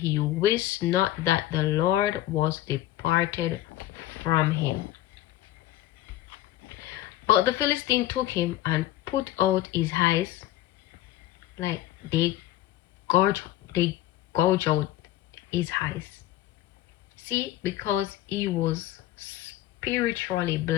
he wist not that the Lord was departed from him. But the Philistine took him and put out his eyes, like gouge, they gouge out his eyes. See, because he was spiritually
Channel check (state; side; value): quieter; right; 14.4 dB